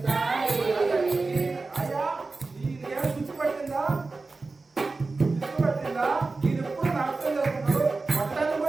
అయ్యా నీకేం గుర్తుపట్టిందా? మీరు ఎప్పుడు నాట్యం చేస్తున్నారు? మొత్తాన్ని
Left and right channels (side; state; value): left; quieter; 3.7 dB